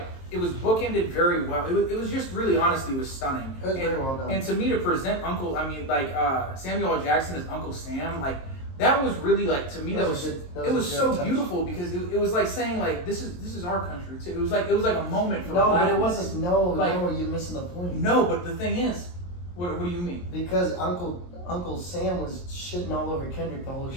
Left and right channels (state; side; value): late; right; 23 ms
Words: very well. It was just really, honestly, it was stunning. It was very well done. And to me, to present Samuel L. Jackson as Uncle Sam, like, that was really, like, to me, it was so beautiful because it was like saying, like, this is our country too. It was like a moment for No, but it blackness. wasn't. Like, no, you're missing the point. No, but the thing is, what do you mean? Because Uncle Sam was shitting all over Kendrick the whole